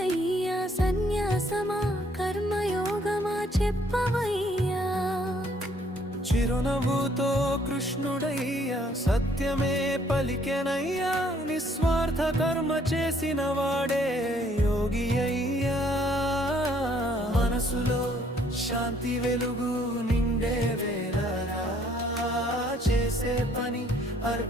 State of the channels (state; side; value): normal; both; correlation 0.64